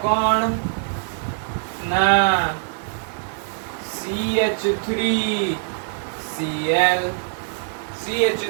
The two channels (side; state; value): left; silent; 64 dB below the other